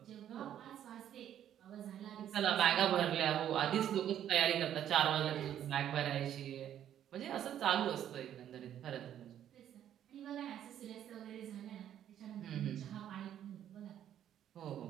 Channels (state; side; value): quieter; left; 10.6 dB